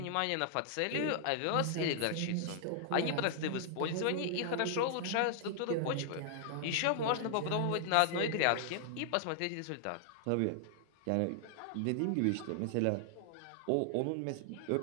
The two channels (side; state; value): both; different; correlation 0.00